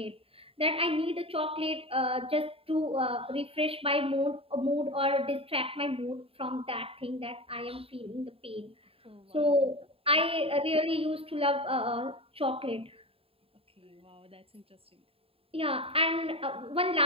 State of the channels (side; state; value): left; late; 0.27 ms